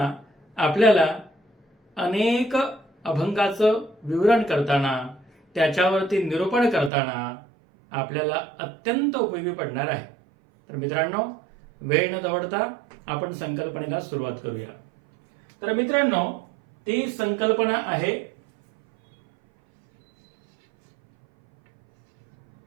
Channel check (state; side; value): drops out; left; at 6.9 s